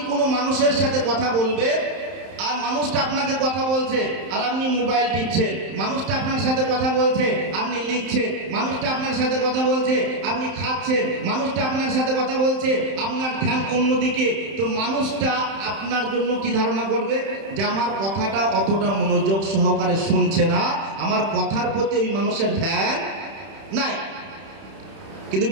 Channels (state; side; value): late; left; 31 ms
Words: কোনো মানুষের সাথে কথা বলবেন আর মানুষটা আপনাকে কথা বলছে আর আপনি মোবাইল টিপছেন, মানুষটা আপনার সাথে কথা বলছে আপনি লিখছেন, মানুষটা আপনার সাথে কথা বলছে আপনি খাচ্ছেন, মানুষটা আপনার সাথে কথা বলছে আপনার ধ্যান অন্যদিকে, তো মানুষটা আপনার জন্য কি ধারণা করবে? যে আমার কথাটা অতটা মনোযোগ সহকারে শুনছে না, আমার কথার প্রতি ওই মানুষের ধ্যান নাই। কিন্তু